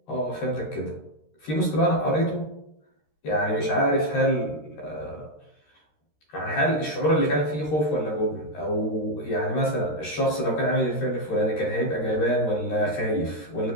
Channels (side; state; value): right; late; 13 ms